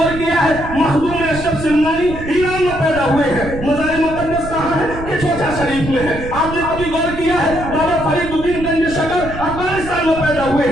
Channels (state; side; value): noise; right; rumble, 10 dB below the sound